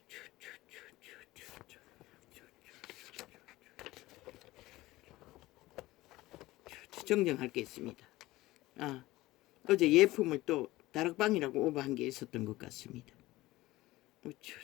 정정할 게 있습니다. 어제 예품을 또 다락방이라고 오버한 게 있었던 것 같습니다.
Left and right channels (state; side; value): quieter; right; 18.2 dB